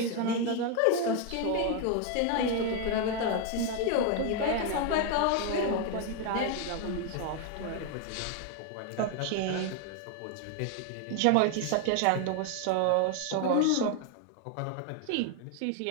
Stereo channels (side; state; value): both; different; correlation 0.01